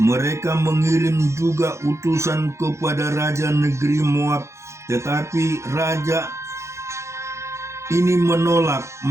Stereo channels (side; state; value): left; late; 0.14 ms